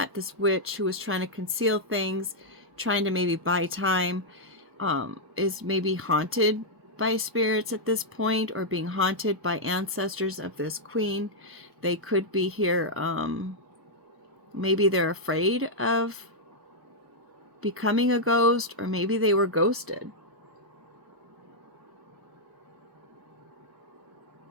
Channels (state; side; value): late; left; 1.0 ms